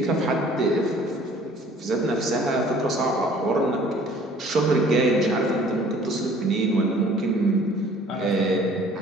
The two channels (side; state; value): both; normal; correlation 0.53